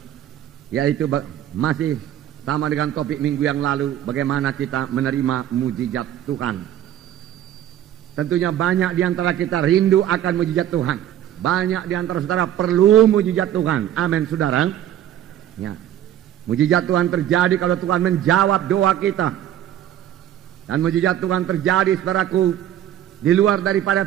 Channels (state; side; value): quieter; left; 11.5 dB